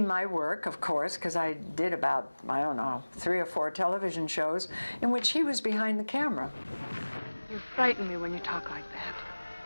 my work, of course, because I did about, I don't know, 3 or 4 television shows in which he was behind the camera. You frighten me when you talk like that.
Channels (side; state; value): both; inverted; correlation -1.00